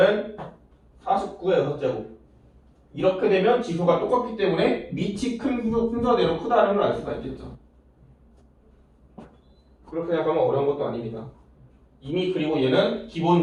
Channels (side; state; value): both; identical; correlation 1.00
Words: 49의 6제곱. 이렇게 되면 지수가 똑같기 때문에 밑이 큰 순서대로 크다는 걸 알 수가 있겠죠. 그렇게 생각하면 어려운 것도 아닙니다. 이미 그리고 얘는